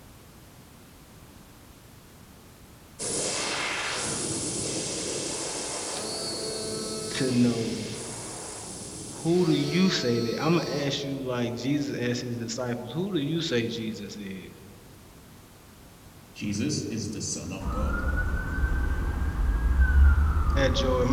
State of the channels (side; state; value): both; identical; correlation 1.00